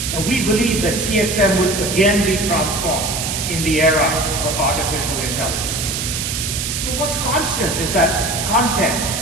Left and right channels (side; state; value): right; noise; hiss, 3 dB below the sound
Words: And we believe that CXM will again be transformed in the era of artificial intelligence. But what's constant is that content,